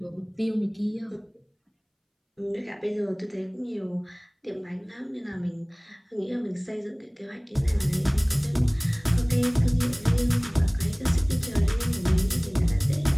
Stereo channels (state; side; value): identical; both; correlation 1.00